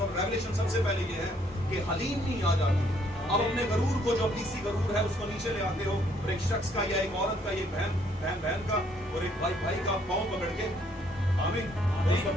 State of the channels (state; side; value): normal; both; correlation 0.66